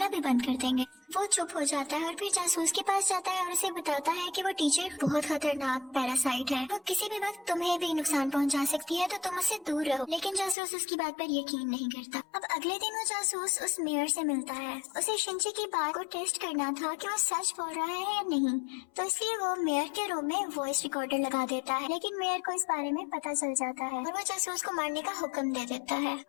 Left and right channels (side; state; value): right; drops out; at 10.6 s